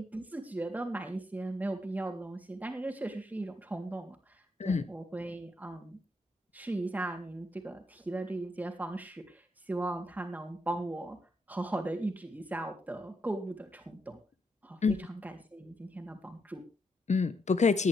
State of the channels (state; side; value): normal; both; correlation 0.79